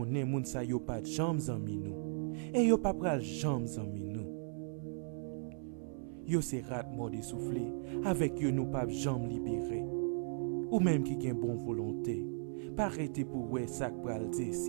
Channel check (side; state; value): left; silent; 53 dB below the other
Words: moun sa yo pas jambes zanmi nous. Et yo pas pral jambes zanmi nous. Yo se rat mort essoufflé, avec yo nou pas jambes libéré. Ou même qui gen bon volonté, pas arrêter pour ouais ça pral